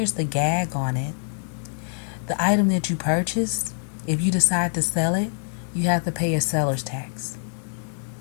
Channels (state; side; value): silent; right; digital silence